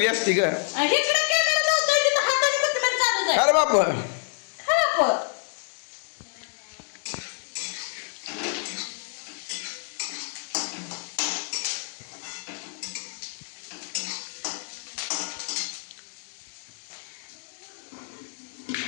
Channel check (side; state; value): right; silent; 60 dB below the other